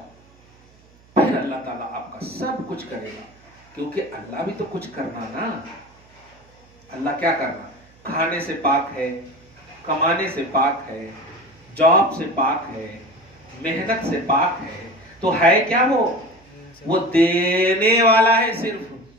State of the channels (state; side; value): noise; right; hum, 29 dB below the sound